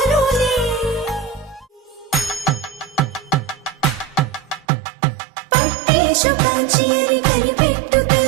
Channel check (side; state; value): left; drops out; at 4.7 s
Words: పట్టేశు కాంచి అని కనిపెట్టు